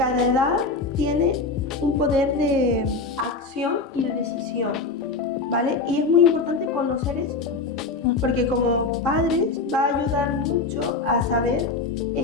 edad tiene un poder de acción y de decisión, ¿vale? Y es muy importante conocer esto, porque como padres va a ayudar mucho a saber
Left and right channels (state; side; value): quieter; right; 3.9 dB